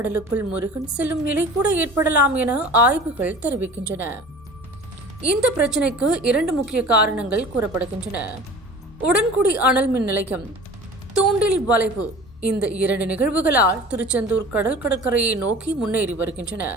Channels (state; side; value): normal; both; correlation 0.42